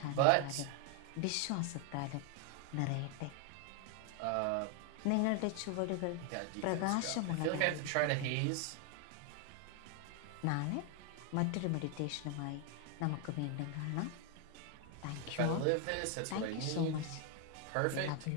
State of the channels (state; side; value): different; both; correlation 0.01